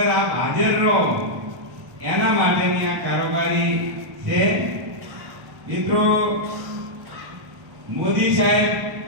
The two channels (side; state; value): left; late; 1.1 ms